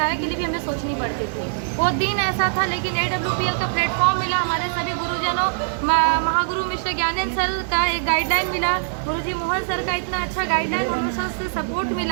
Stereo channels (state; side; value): silent; left; digital silence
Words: के लिए भी हमें सोचनी पड़ती थी। वो दिन ऐसा था, लेकिन AWPL का प्लेटफॉर्म मिला, हमारे सभी गुरुजनों, महागुरु मिस्टर ज्ञानेंद्र सर का एक गाइडलाइन मिला, गुरुजी मोहन सर का इतना अच्छा गाइडलाइन, हमेशा से सपोर्ट